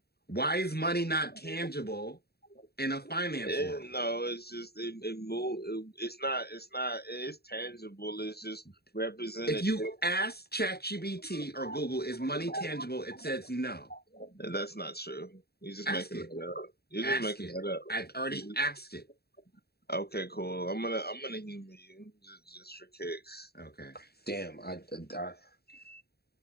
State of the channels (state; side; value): late; right; 0.46 ms